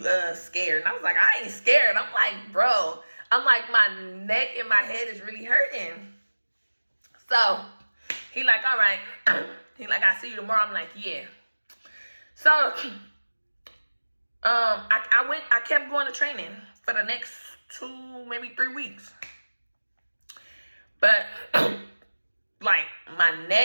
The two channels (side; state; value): both; inverted; correlation -1.00